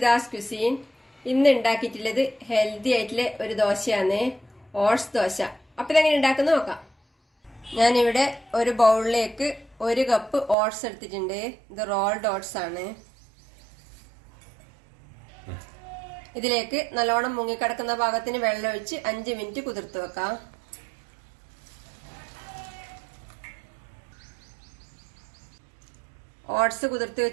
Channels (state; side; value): drops out; left; at 10.6 s